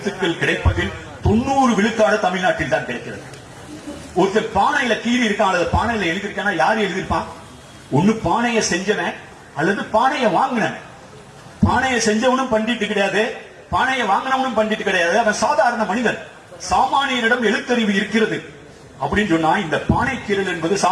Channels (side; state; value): both; identical; correlation 1.00